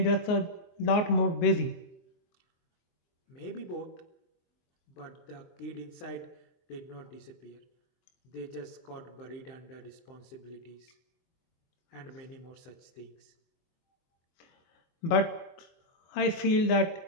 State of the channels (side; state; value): right; late; 24 ms